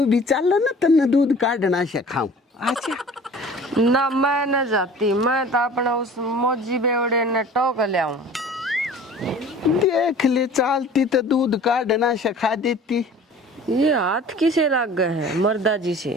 भी चल ना तन्ने दूध काटना सिखाऊं। अच्छा ना मैं न जाती, मैं तो अपना उस मौजी बेवड़े ने टोक लाऊं। देख ले चालती तो दूध काटना सिखा देती। ये हाथ किसे लग गए हैं मर्दा जी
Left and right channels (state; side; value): normal; both; correlation 0.45